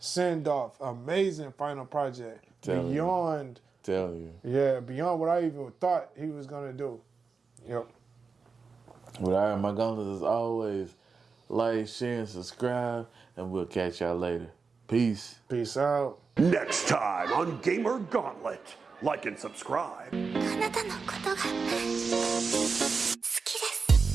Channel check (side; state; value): left; quieter; 4.9 dB